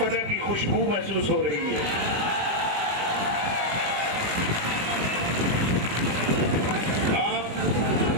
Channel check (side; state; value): left; late; 20 ms